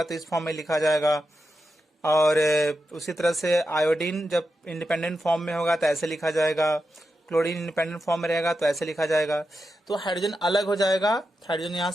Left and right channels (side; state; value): both; normal; correlation 0.88